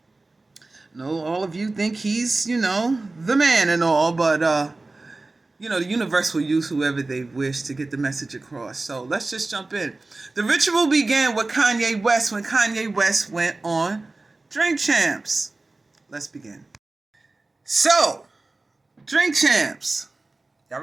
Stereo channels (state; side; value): quieter; left; 3.2 dB